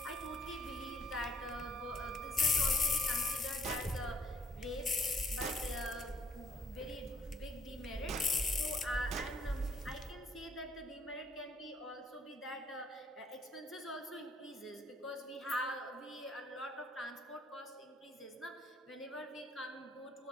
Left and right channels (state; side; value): normal; both; correlation 0.66